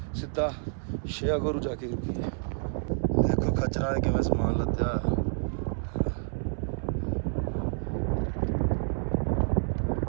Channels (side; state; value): left; silent; 59 dB below the other